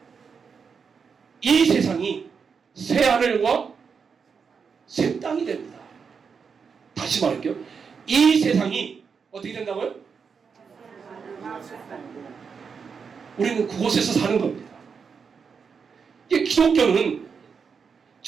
이 세상이 새 하늘과 새 땅이 됩니다. 다시 말할게요. 이 세상이 어떻게 된다고요? 우리는 그곳에서 사는 겁니다. 이 기독교는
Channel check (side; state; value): left; quieter; 5.9 dB